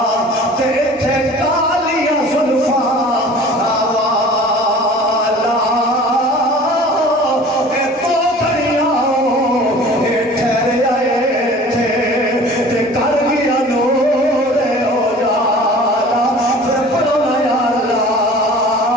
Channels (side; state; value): both; normal; correlation 0.44